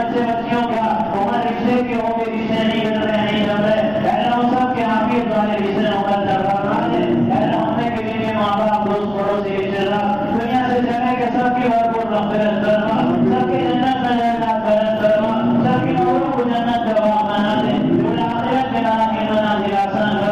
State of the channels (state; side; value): noise; right; rumble, 21 dB below the sound